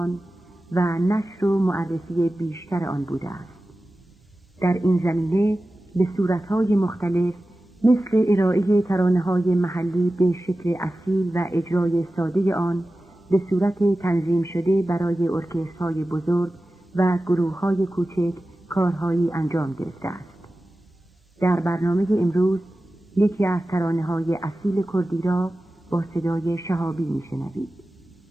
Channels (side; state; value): both; normal; correlation 0.95